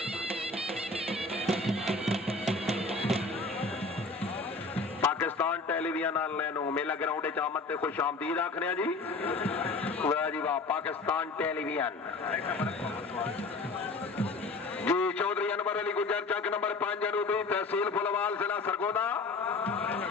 पाकिस्तान टेलीविजन वाले मेला ग्राउंड आमद से खुश आमदीद आखने जी। वाह जी वाह। पाकिस्तान टेलीविजन जी। चौधरी अनवर अली गुजर चक नंबर 5 जनूबी तहसील फुलवाल जिला सरगोदा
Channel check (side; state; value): right; quieter; 3.6 dB